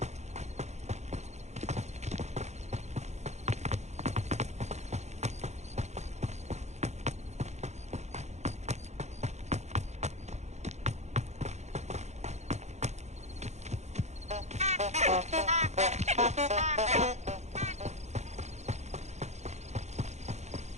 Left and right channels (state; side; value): late; left; 0.33 ms